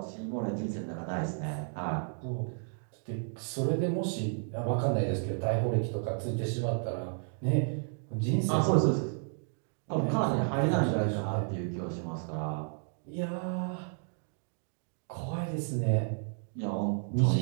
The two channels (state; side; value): silent; left; 56 dB below the other